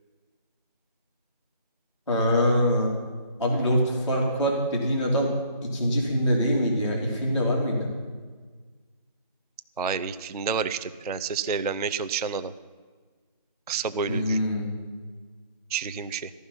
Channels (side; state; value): both; inverted; correlation -0.55